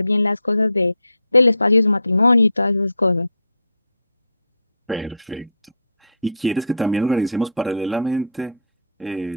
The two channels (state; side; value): inverted; both; correlation -0.62